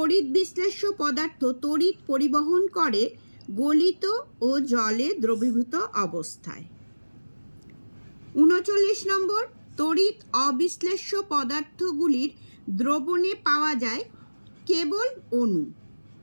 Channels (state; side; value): inverted; both; correlation -1.00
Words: বিশ্লেষ্য পদার্থ তড়িৎ পরিবহন করে গলিত ও জলে দ্রবীভূত অবস্থায়। 39 নম্বর, তড়িৎ অবিশ্লেষ্য পদার্থগুলির দ্রবণে পাওয়া যায় কেবল অণু,